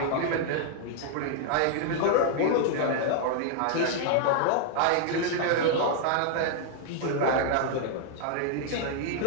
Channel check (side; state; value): both; different; correlation -0.01